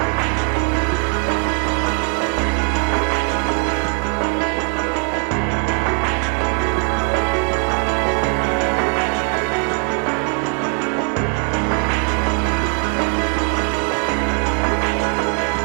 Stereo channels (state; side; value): quieter; left; 39.4 dB